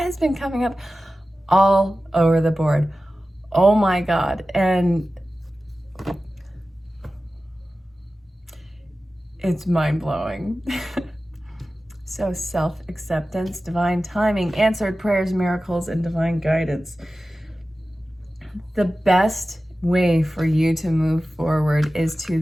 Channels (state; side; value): normal; both; correlation 0.95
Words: has been coming up all over the board. Oh my God. And it's mind-blowing. So self-acceptance, divine timing, answered prayers, miracles, and divine guidance. The best way for you to move forward is